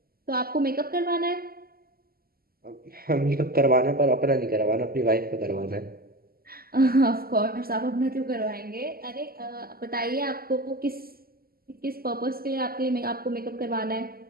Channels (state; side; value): late; left; 0.43 ms